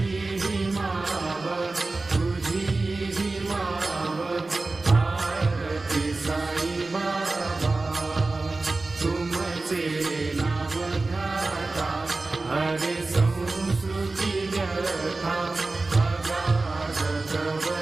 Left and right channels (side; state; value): left; quieter; 3.4 dB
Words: हरे संस्कृती व्यथा अगाध तव